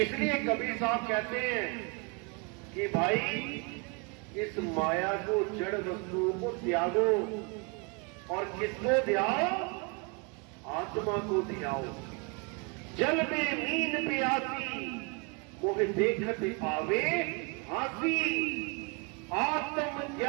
कबीर साहब कहते हैं कि भाई इस माया को, जड़ वस्तुओं को त्यागो और किसको ध्याओ? आत्मा को ध्याओ। जल में मीन प्यासी मोह देखत पावे हासी, आत्म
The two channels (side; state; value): left; quieter; 31.9 dB